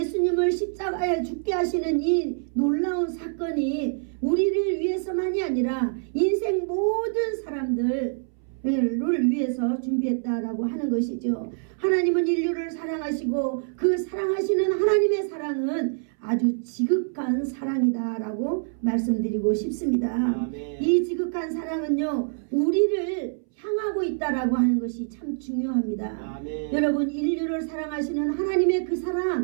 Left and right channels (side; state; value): left; silent; 61 dB below the other